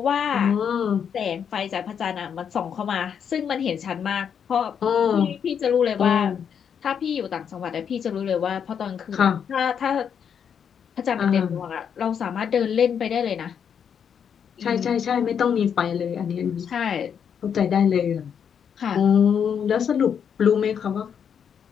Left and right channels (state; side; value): quieter; right; 7.7 dB